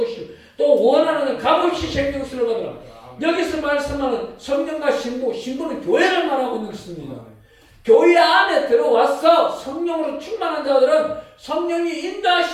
또 원하는 값없이 생명수를 받으라. 여기서 말씀하는 성령과 신부는 교회를 말하고 있는 것입니다. 교회 안에 들어와서 성령으로 충만한 자들은 성령이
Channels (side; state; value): both; identical; correlation 1.00